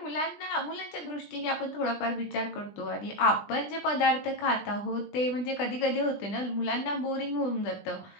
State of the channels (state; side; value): late; right; 20 ms